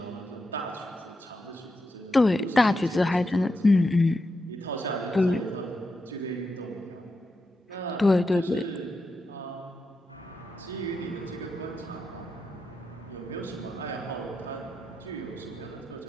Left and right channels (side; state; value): both; normal; correlation 0.86